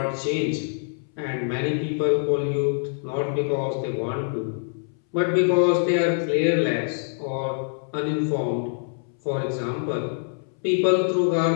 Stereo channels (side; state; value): right; silent; 62 dB below the other